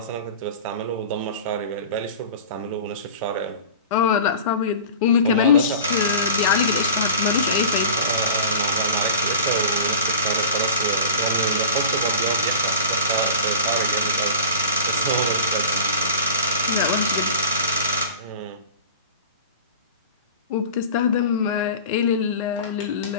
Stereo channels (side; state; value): both; inverted; correlation -0.37